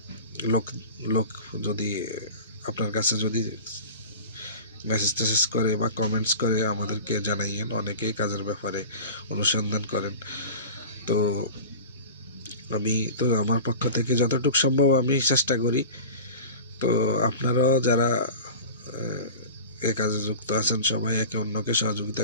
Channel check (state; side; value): inverted; both; correlation -0.35